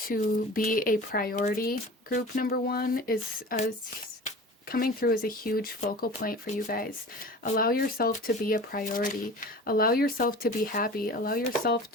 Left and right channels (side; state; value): both; normal; correlation 0.37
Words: be a priority. Group number 1 is coming through as a huge focal point for you guys. Allow yourself to be a priority. Allow yourself to be happy. Allow yourself